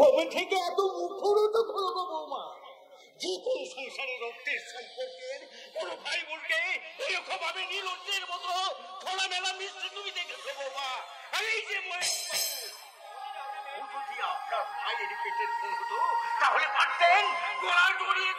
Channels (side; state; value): both; identical; correlation 1.00